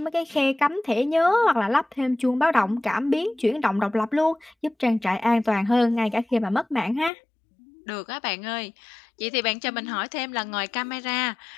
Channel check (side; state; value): right; drops out; at 7.1 s